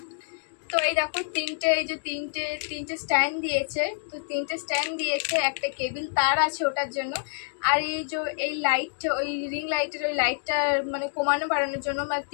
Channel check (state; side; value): silent; right; digital silence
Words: তো এই দেখো তিনটে স্ট্যান্ড দিয়েছে। তো তিনটে স্ট্যান্ড দিয়েছে, একটা কেবিল তার আছে ওটার জন্য। আর এই লাইট, ওই রিং লাইটের ওই লাইটটা মানে কমানো বাড়ানোর জন্য, মানে